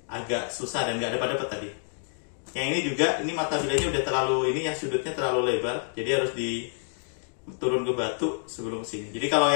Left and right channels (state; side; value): silent; right; 59 dB below the other